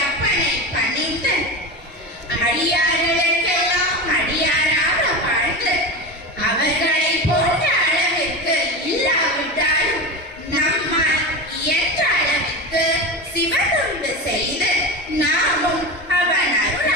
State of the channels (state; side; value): normal; both; correlation 0.23